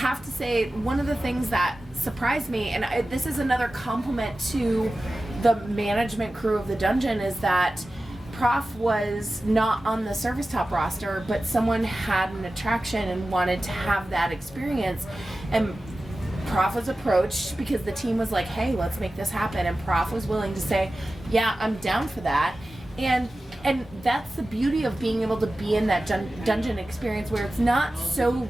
to say, one of the things that surprised me, and this is another compliment to the management crew of the dungeon, is that Prof was not on the service top roster, but someone had an attraction and wanted to have that experience. And Prof was approached because the team was like, hey, let's make this happen. And Prof was willing to say, yeah, I'm down for that. And that's the beauty of being able to be in that dungeon experience where it's not so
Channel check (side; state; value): both; normal; correlation 0.95